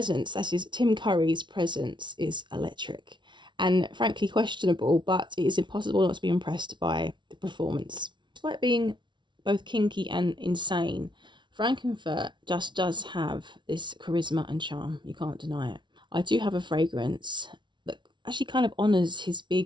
that is Tim Curry's presence, is electric and frankly questionable, but it is impossible not to be impressed by the performance. Despite being both kinky and insane, Frank-N-Furter just does have this charisma and charm. You can't deny it. I do have a fragrance that actually kind of honours his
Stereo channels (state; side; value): late; left; 0.23 ms